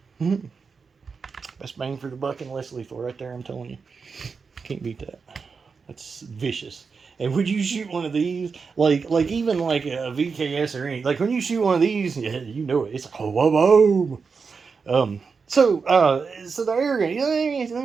best bang for the buck and less lethal right there, I'm telling you. Can't beat that. That's vicious. And would you shoot one of these, like even like a VKS or anything, like when you shoot one of these, yeah, you know it. It's like, oh, boom. So the air gun, let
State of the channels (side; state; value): left; quieter; 5.2 dB